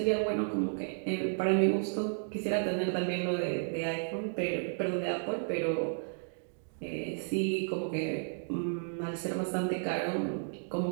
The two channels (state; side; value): silent; left; digital silence